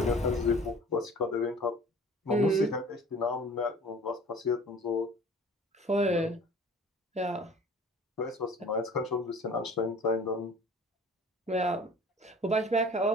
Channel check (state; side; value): normal; both; correlation 0.46